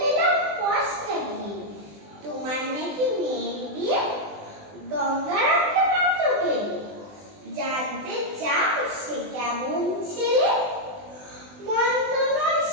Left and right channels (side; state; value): left; late; 20 ms